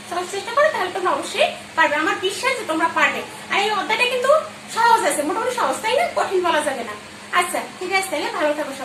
সবাই চেষ্টা করো, তাহলে তোমরা অবশ্যই পারবে। আমার বিশ্বাস যে তোমরা পারবে। আর এই অধ্যায়টা কিন্তু সহজ আছে, মোটামুটি সহজ, তাই না? কঠিন বলা যাবে না। আচ্ছা ঠিক আছে, তাহলে ভালো থাকো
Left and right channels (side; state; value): both; identical; correlation 1.00